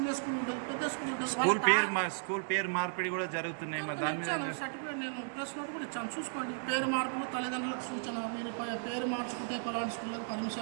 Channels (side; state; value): left; silent; digital silence